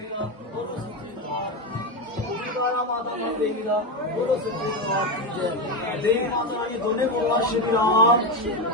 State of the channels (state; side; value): normal; both; correlation 0.13